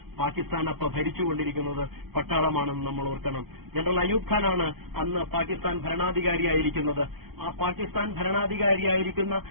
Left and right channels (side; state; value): left; late; 0.95 ms